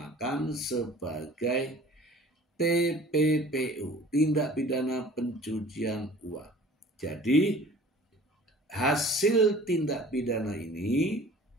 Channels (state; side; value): normal; both; correlation 0.47